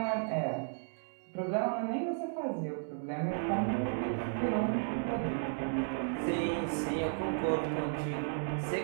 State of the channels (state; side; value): silent; left; digital silence